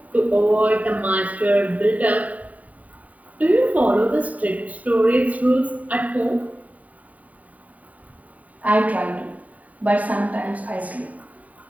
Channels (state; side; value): late; left; 0.072 ms